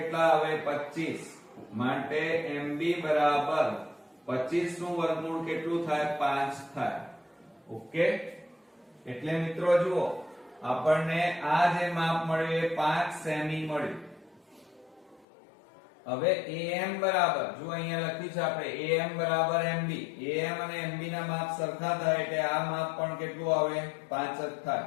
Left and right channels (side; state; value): right; drops out; at 15.2 s